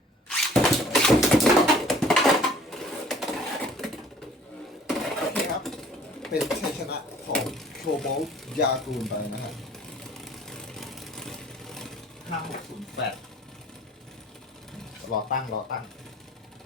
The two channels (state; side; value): normal; both; correlation 0.53